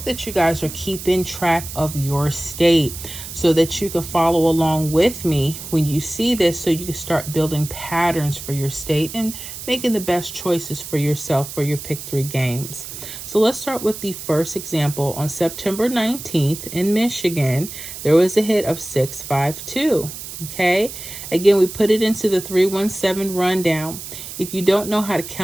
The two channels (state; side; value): noise; right; hiss, 10 dB below the sound